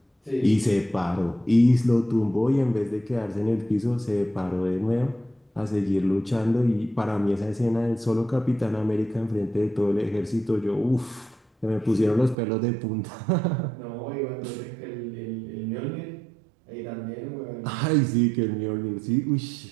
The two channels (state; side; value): drops out; left; at 12.4 s